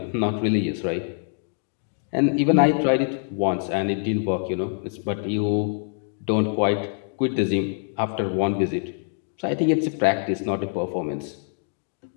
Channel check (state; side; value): silent; right; 62 dB below the other